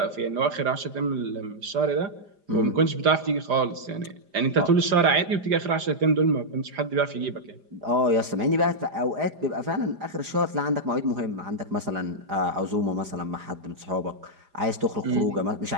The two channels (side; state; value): left; late; 5.0 ms